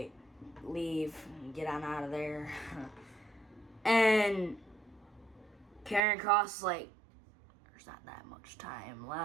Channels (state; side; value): drops out; left; at 6.0 s